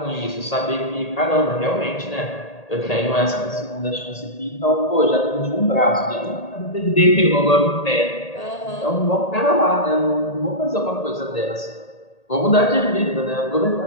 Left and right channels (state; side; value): late; right; 1.8 ms